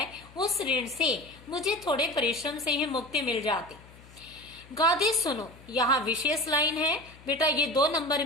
उस ऋण से मुझे थोड़े परिश्रम से ही मुक्ति मिल जाती। गादी सुनो, यहाँ विशेष लाइन है बेटा, ये 2 नंबर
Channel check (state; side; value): noise; left; hum, 22 dB below the sound